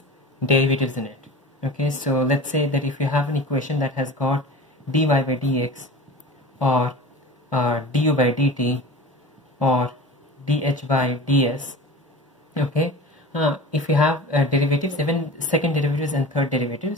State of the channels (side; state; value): both; normal; correlation 0.35